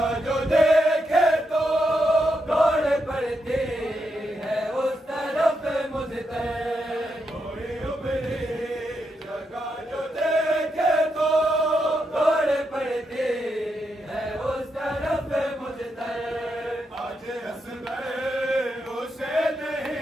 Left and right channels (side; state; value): both; normal; correlation 0.83